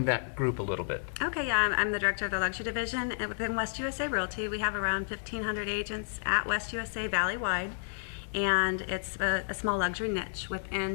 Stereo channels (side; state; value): right; silent; 57 dB below the other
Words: that group a little bit. Okay, yeah, I'm the director of the luxury division, and within West USA Realty, we have around 1,500 agents at West USA Valley-wide, and it's a small luxury niche